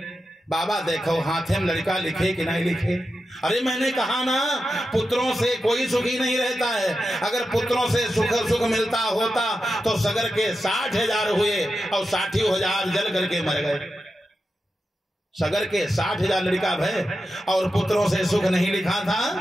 बाबा देखो हाथे में लड़का लिखे कि नहीं लिखे। अरे मैंने कहा ना पुत्रों से कोई सुखी नहीं रहता है, अगर पुत्रों से सुख मिलता होता तो सगर के 60,000 हुए और 60,000 जल करके मर गए। सगर के 60,000 लड़का भय और पुत्रों से सुख नहीं लिखा था।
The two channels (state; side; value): normal; both; correlation 0.90